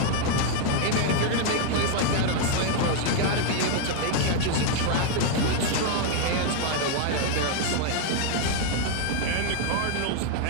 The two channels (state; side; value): different; both; correlation 0.00